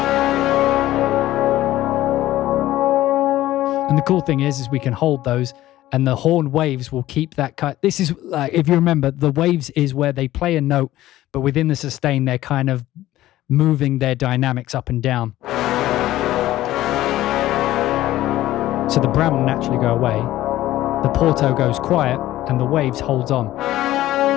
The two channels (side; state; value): right; quieter; 15.0 dB